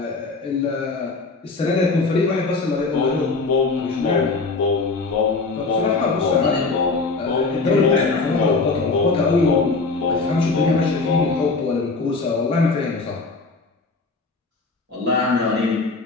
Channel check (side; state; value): right; quieter; 3.9 dB